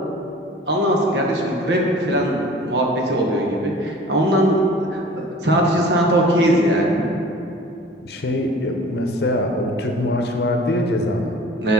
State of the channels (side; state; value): both; normal; correlation 0.45